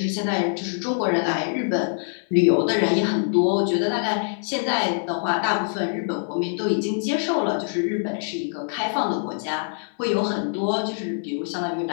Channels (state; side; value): silent; right; 63 dB below the other